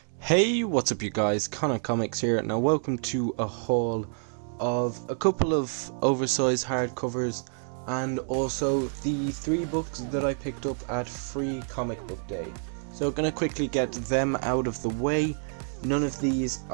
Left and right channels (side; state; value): left; silent; 59 dB below the other